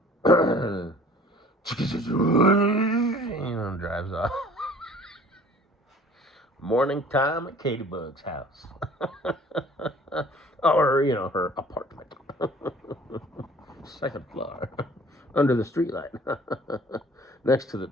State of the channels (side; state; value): both; normal; correlation 0.50